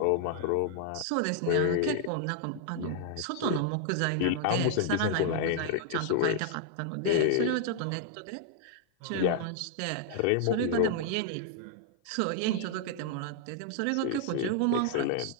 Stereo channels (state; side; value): different; both; correlation -0.01